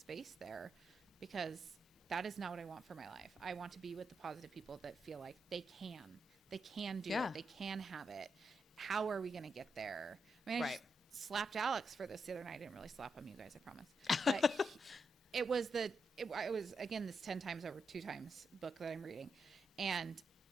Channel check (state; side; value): normal; both; correlation 0.84